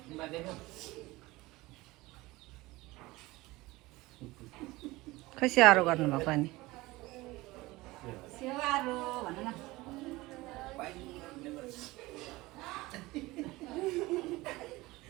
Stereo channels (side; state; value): left; quieter; 20.3 dB